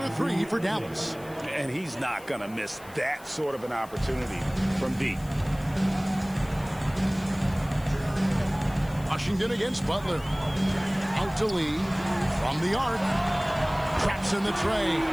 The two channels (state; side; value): noise; left; hiss, 22 dB below the sound